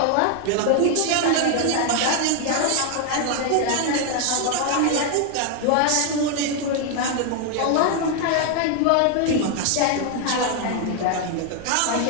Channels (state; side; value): different; both; correlation 0.00